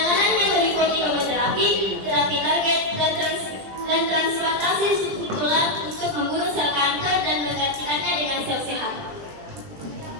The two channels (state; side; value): late; left; 20 ms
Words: yang meliputi kemoterapi, terapi target, dan transplantasi susun tulang untuk membunuh sel kanker dan menggantikannya dengan sel sehat.